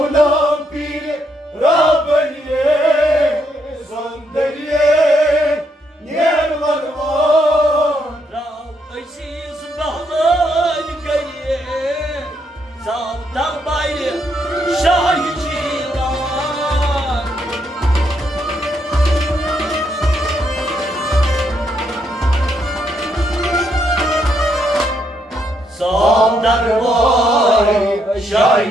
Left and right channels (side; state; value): both; normal; correlation 0.76